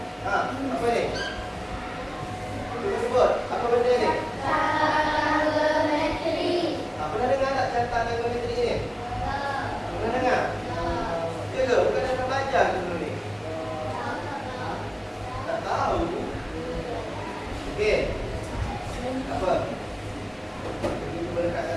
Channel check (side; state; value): both; identical; correlation 1.00